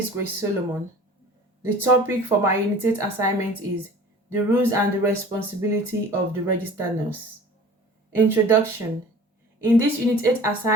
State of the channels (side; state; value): both; normal; correlation 0.44